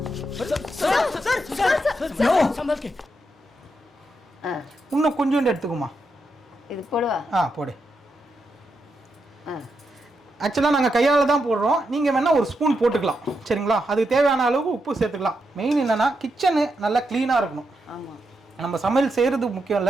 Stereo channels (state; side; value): normal; both; correlation 0.84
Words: இன்னும் கொஞ்சோண்டு எடுத்துக்குமா. இது போடுவா. போடு. ஆக்சுவலாக நாங்கள் கையால் தான் போடுறோம், நீங்கள் வேணால் ஒரு ஸ்பூன் போட்டுக்கலாம் சரிங்களா. அதுக்கு தேவையான அளவுக்கு உப்பு சேர்த்துக்கலாம். மெயின் என்னென்னா கிச்சனு நல்லா க்ளீனாக இருக்கணும். நம்ம சமையல் செய்கிறது முக்கியம்